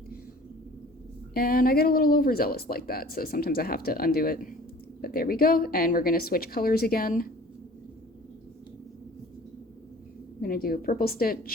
And I get a little overzealous like that, so sometimes I have to undo it. But there we go, and we're gonna switch colors again. I'm gonna do a purple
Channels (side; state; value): both; normal; correlation 0.47